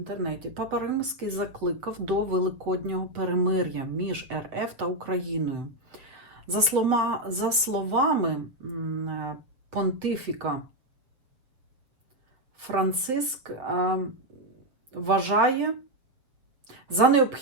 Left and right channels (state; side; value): late; left; 7.1 ms